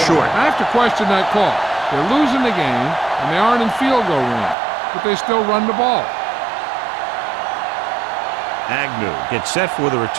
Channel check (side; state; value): left; drops out; at 4.5 s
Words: short. I have to question that call. They're losing the game, and they aren't in field goal range, but they still run the ball. Agnew gets set for the